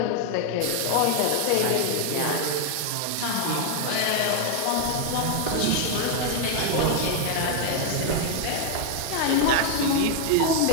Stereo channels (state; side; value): different; both; correlation 0.00